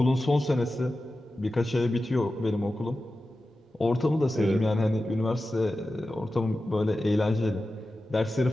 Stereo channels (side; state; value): both; normal; correlation 0.93